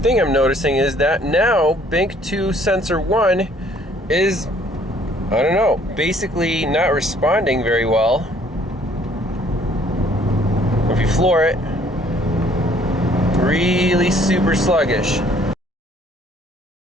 I'm noticing is that now bank 2 sensor 1 is, I don't know, basically not responding very well. If you floor it, really super sluggish.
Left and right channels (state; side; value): normal; both; correlation 0.60